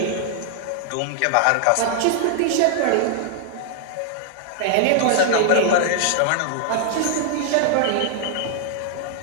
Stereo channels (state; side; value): different; both; correlation 0.00